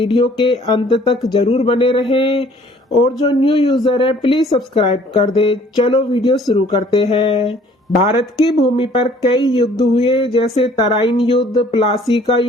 के अंत तक जरूर बने रहें और जो न्यू यूजर है प्लीज सब्सक्राइब कर दे। चलो वीडियो शुरू करते हैं। भारत की भूमि पर कई युद्ध हुए, जैसे तराइन युद्ध, प्लासी का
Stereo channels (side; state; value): both; normal; correlation 0.56